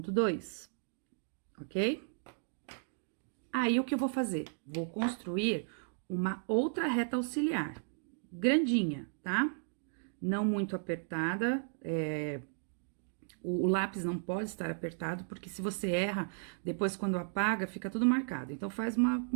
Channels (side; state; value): left; silent; digital silence